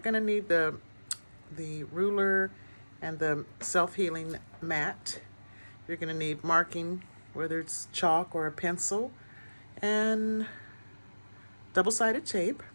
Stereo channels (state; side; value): inverted; both; correlation -1.00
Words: going to need the ruler and the self-healing mat. You're going to need marking, whether it's chalk or a pencil, and double-sided tape.